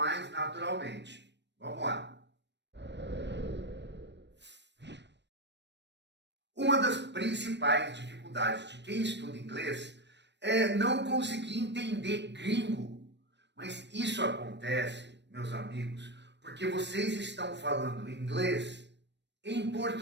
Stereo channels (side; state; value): left; late; 0.51 ms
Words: naturalmente. Vamos lá. Uma das principais dificuldades de quem estuda inglês é não conseguir entender gringo. Mas isso acontece, meus amigos, porque vocês estão falando inglês em